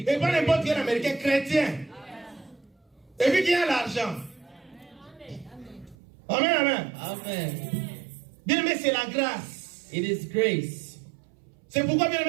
pas n'importe quel Américain chrétien. Et puis qui a l'argent. Amen, amen. Amen. Bien aimé, c'est la grâce. It is grace. C'est pourquoi, bien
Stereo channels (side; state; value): left; drops out; at 6.0 s